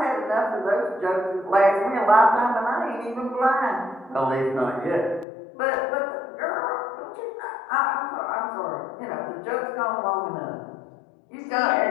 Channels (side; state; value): right; drops out; at 5.2 s